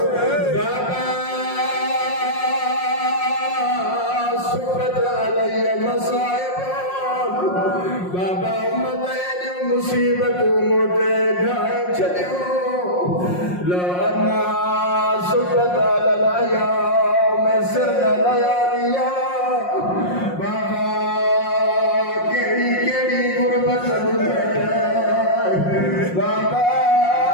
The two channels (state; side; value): late; right; 5.6 ms